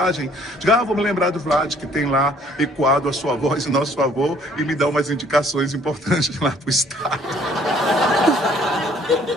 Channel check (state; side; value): normal; both; correlation 0.59